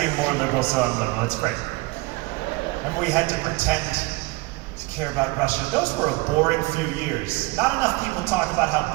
more liberal, so I'm liberal. It's great. And we had to pretend to care about Russia. Those were a boring few years. Not enough people talk about how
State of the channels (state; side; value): quieter; left; 23.5 dB